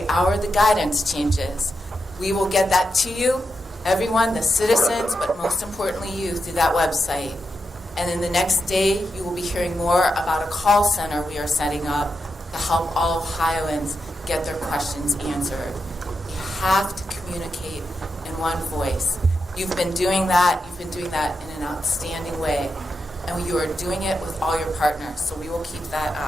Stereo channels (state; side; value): normal; both; correlation 0.86